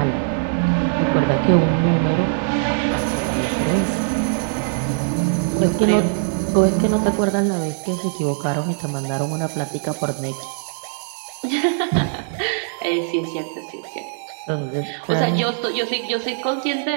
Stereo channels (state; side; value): silent; left; digital silence